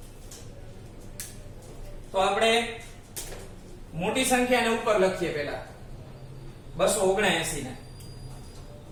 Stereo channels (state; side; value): identical; both; correlation 1.00